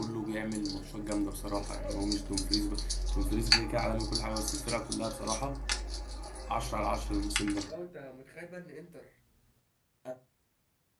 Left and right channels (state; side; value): identical; both; correlation 1.00